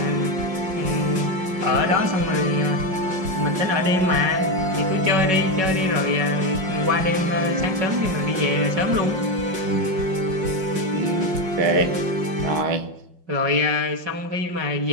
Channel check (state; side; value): late; left; 5.5 ms